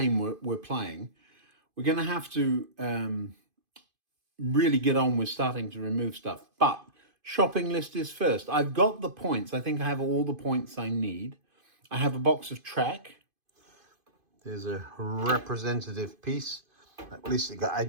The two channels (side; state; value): left; late; 2.5 ms